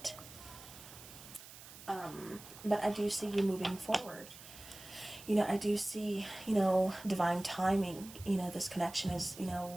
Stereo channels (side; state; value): right; noise; hiss, 16 dB below the sound